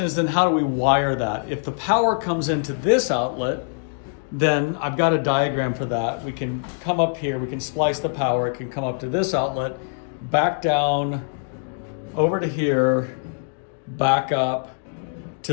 is, then how do we wire that? If the power comes into this outlet, then I've got a diagram for that. We can come up here, we can splice the power, it can come up to this outlet, back down, over to here, back up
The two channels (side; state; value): right; silent; 63 dB below the other